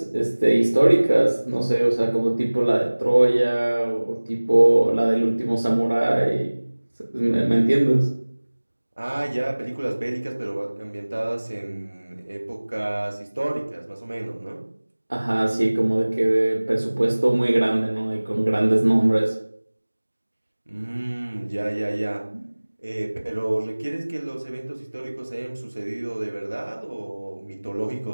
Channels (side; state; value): both; inverted; correlation -1.00